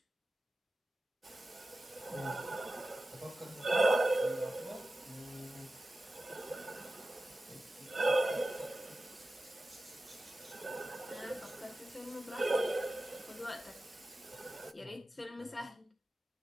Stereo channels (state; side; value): normal; both; correlation 0.94